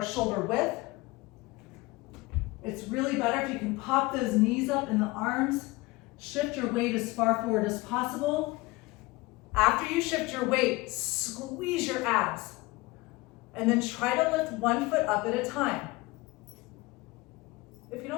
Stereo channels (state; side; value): quieter; right; 21.7 dB